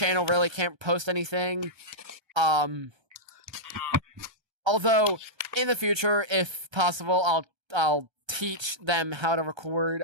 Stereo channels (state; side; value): late; left; 1.3 ms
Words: really can't post anything. Although, in the future, if possible, I'll teach them how to record,